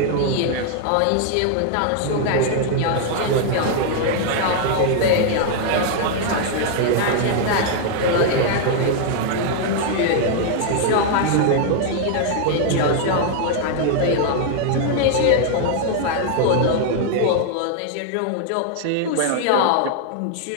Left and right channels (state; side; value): different; both; correlation 0.00